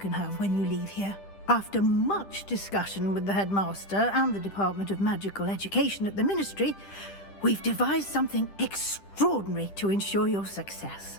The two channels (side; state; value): right; late; 10 ms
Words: have when you leave here. After much discussion with the headmaster and the Department of Magical Education at the Ministry, we've devised something extraordinary to ensure your success.